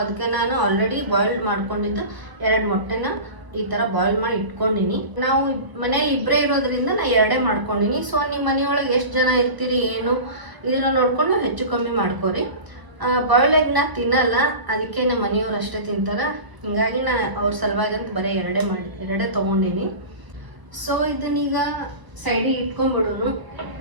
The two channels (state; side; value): late; left; 1.0 ms